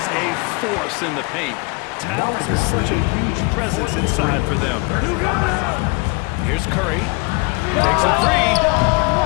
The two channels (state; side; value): quieter; right; 28.9 dB